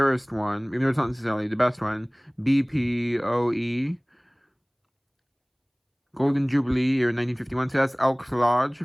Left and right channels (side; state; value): both; identical; correlation 1.00